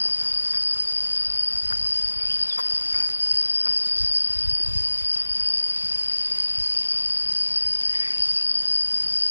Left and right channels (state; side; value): inverted; both; correlation -1.00